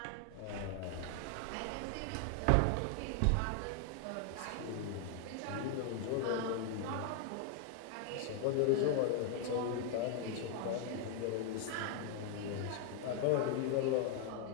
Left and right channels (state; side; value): different; both; correlation 0.00